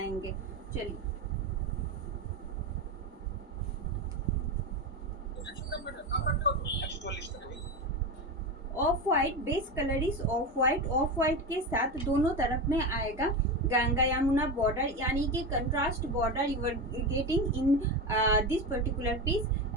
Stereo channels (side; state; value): both; normal; correlation 0.19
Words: चलिए, of white base colour is of white. Of white के साथ दोनों तरफ में आएगा गंगा यमुना बॉर्डर, यानी कि contrast border you are getting in this particular piece.